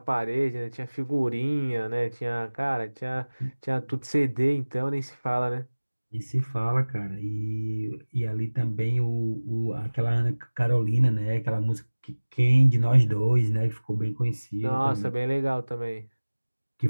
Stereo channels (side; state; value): both; inverted; correlation -1.00